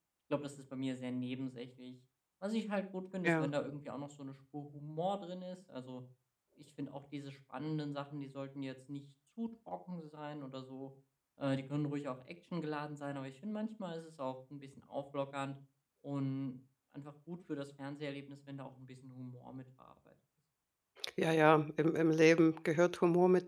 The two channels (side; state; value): both; identical; correlation 1.00